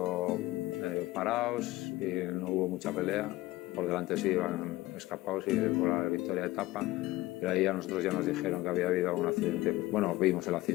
parados y no hubo mucha pelea. Por delante sí iban escapados y por la victoria de etapa, pero ahí a nosotros ya nos dijeron que había habido algún accidente. Bueno, vimos el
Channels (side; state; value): right; quieter; 18.2 dB